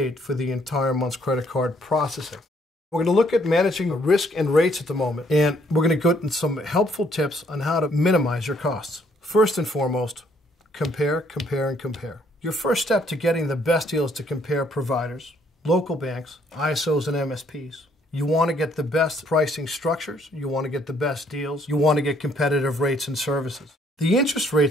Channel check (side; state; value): both; normal; correlation 0.67